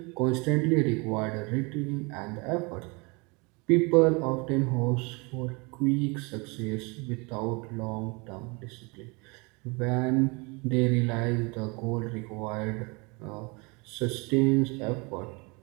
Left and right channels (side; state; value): left; quieter; 28.8 dB